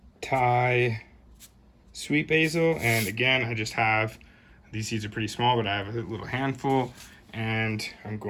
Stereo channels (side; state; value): both; identical; correlation 1.00